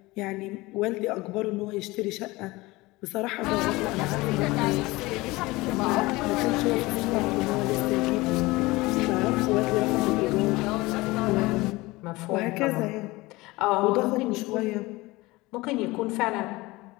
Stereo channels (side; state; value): right; quieter; 21.3 dB